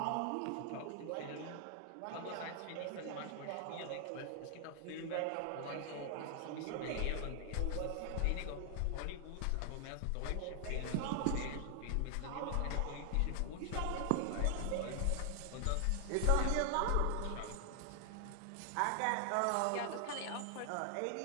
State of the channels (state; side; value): different; both; correlation 0.00